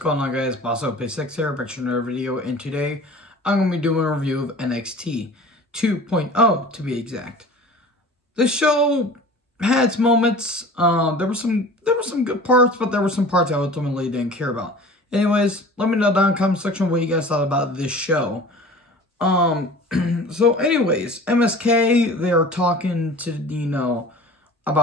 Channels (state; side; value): normal; both; correlation 0.41